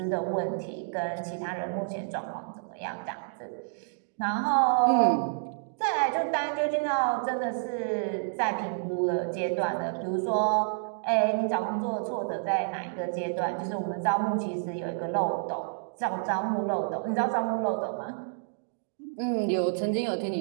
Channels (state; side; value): silent; left; digital silence